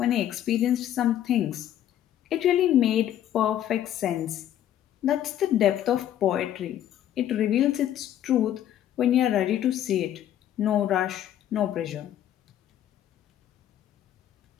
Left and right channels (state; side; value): quieter; right; 11.3 dB